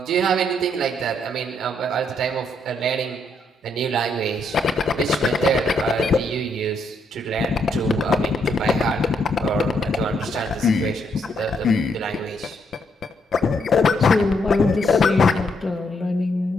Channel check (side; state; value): both; normal; correlation 0.75